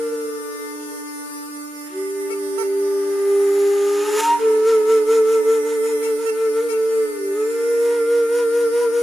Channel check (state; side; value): normal; both; correlation 0.92